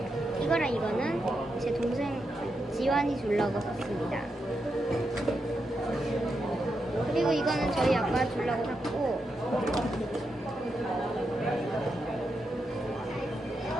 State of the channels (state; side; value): normal; both; correlation 0.85